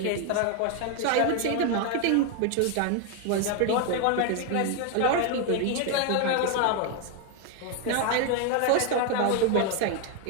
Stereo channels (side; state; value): both; different; correlation 0.01